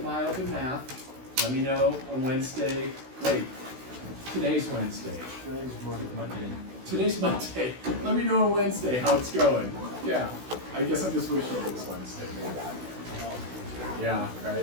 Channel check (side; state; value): left; late; 16 ms